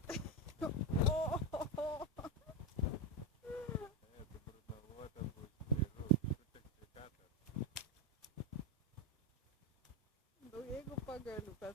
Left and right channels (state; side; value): normal; both; correlation 0.08